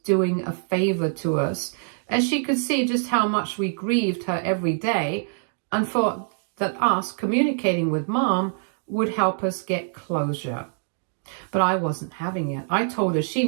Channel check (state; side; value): silent; left; digital silence